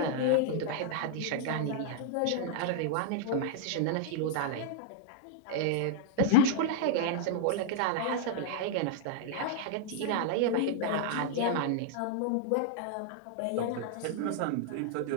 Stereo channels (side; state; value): both; different; correlation -0.01